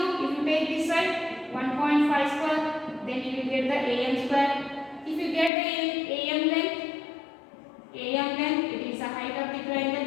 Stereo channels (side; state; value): right; drops out; at 5.5 s